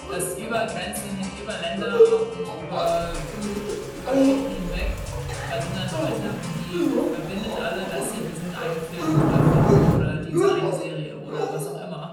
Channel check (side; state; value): both; identical; correlation 1.00